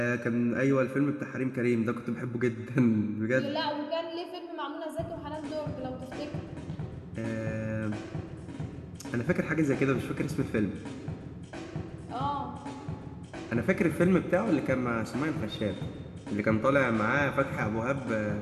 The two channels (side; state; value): both; identical; correlation 1.00